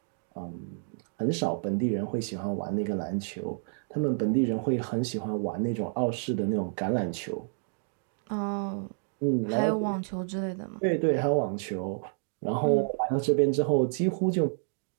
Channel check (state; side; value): silent; left; digital silence